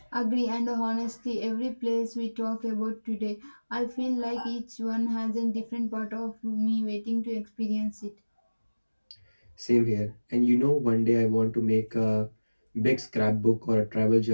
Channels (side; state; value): both; inverted; correlation -1.00